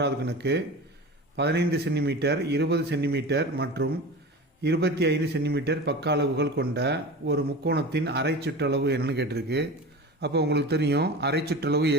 கணக்கு 15 சென்டிமீட்டர் 20 சென்டிமீட்டர் மற்றும் 25 சென்டிமீட்டர் பக்க அளவுகள் கொண்ட ஒரு முக்கோணத்தின் அரை சுற்றளவு என்னன்னு கேட்டிருக்கு. அப்போ உங்களுக்கு தெரியும் அரை சுற்றளவு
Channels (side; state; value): both; normal; correlation 0.32